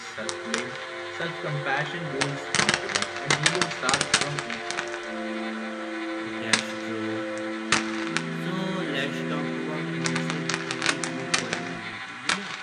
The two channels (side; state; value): both; identical; correlation 1.00